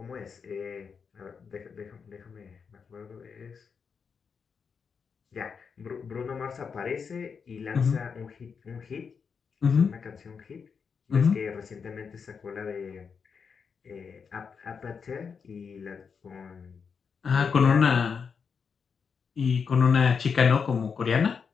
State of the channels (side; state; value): right; quieter; 6.0 dB